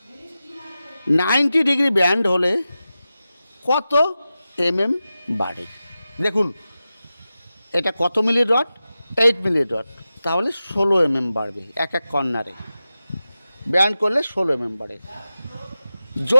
90 ডিগ্রি ব্যান্ড হলে কত বাড়ে? দেখুন এটা কত মিলি রড? 8 মিলি রড, তাহলে 16 বাড়বে এক এক কর্নারে। ব্যান্ড করলে 16 বাড়ে।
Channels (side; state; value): both; inverted; correlation -0.93